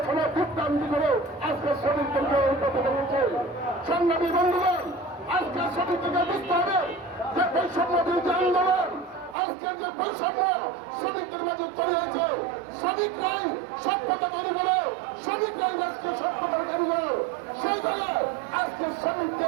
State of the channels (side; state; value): left; drops out; at 9.3 s